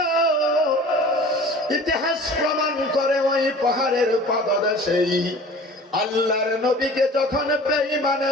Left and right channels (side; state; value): both; normal; correlation 0.43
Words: ইতিহাস প্রমাণ করে ওই পাহাড়ের পাদদেশেই আল্লাহর নবীকে যখন